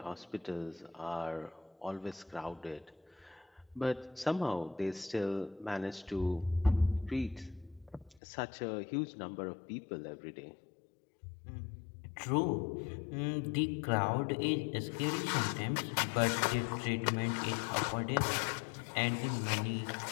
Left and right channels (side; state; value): right; drops out; at 8.2 s